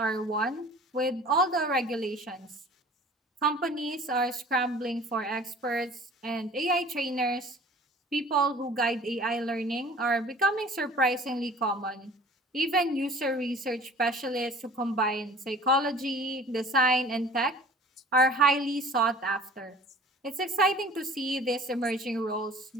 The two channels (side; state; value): both; normal; correlation 0.47